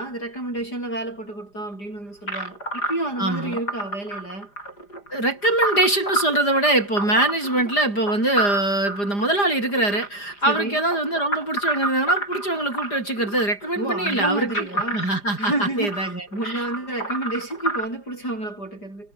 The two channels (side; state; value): right; late; 4.9 ms